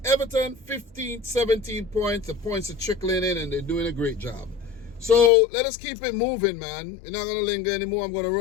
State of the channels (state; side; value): drops out; right; at 5.3 s